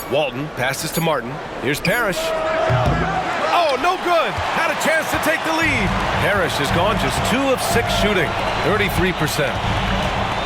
Walton passes to Martin. Here's Parrish. Oh, no good. Had a chance to take the lead. Parrish has gone just 2 of 6 shooting. 33%.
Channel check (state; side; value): identical; both; correlation 1.00